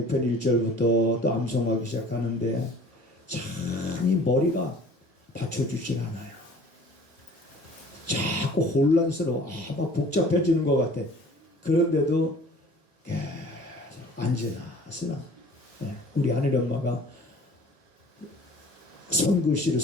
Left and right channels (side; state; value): both; normal; correlation 0.49